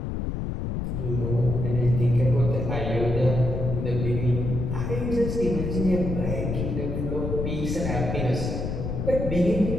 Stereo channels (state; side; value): noise; left; rumble, 2 dB below the sound